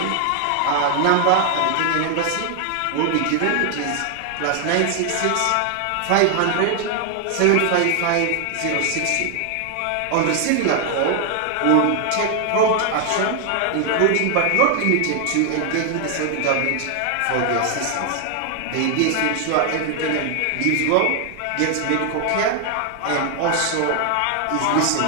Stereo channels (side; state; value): both; different; correlation 0.00